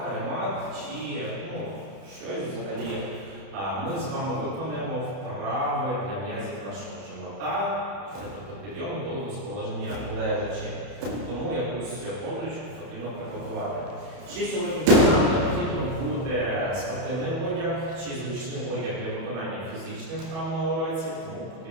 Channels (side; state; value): left; late; 31 ms